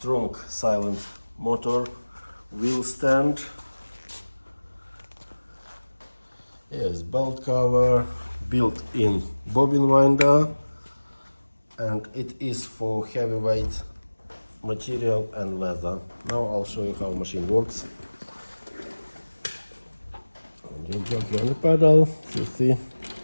silent motor, wheel stand, yes, belt cover, built-in bobbin winder, and it is for heavyweight material and leather. Now I'll show you how the machine works. You jockey on the pedal, you see,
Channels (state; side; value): inverted; both; correlation -1.00